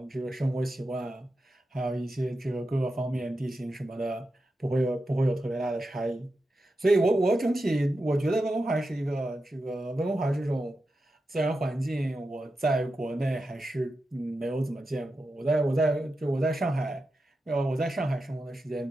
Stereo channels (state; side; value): normal; both; correlation 0.90